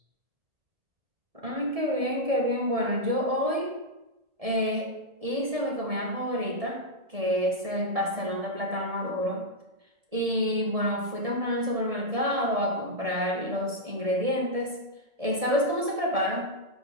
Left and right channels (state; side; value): late; left; 1.7 ms